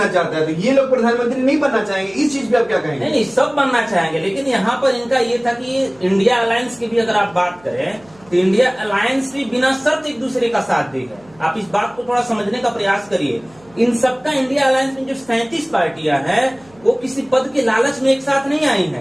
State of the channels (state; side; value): noise; right; hum, 28 dB below the sound